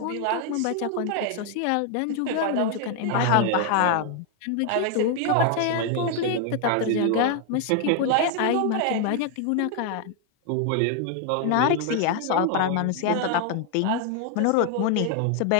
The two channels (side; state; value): both; different; correlation 0.00